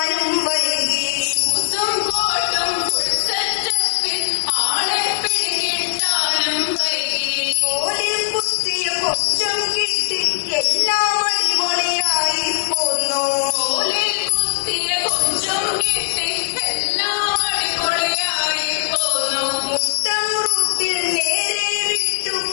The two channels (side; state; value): right; silent; 66 dB below the other